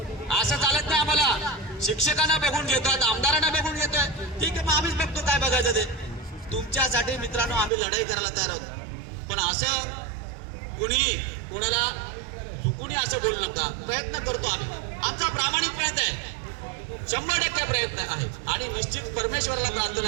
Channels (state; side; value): drops out; left; at 7.7 s